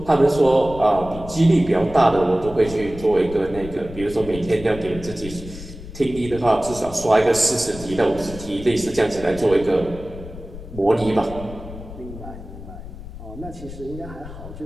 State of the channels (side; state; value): left; noise; rumble, 13 dB below the sound